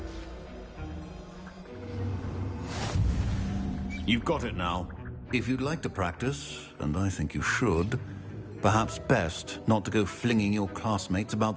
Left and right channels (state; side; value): identical; both; correlation 1.00